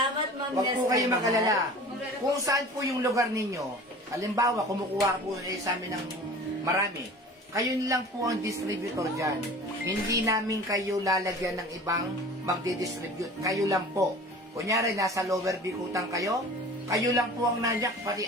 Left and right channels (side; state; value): both; normal; correlation 0.41